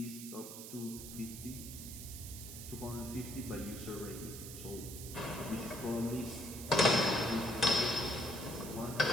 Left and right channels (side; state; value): right; noise; hiss, 10 dB below the sound